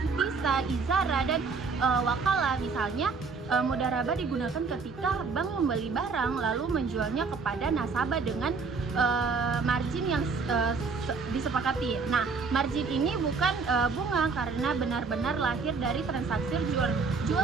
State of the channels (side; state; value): left; quieter; 4.8 dB